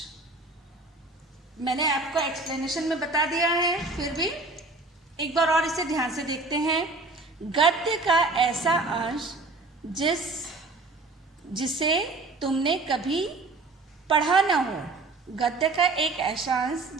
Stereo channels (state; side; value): quieter; left; 3.4 dB